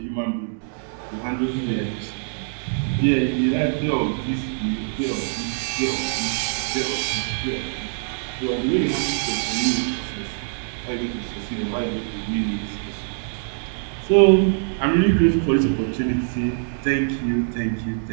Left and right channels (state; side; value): silent; left; digital silence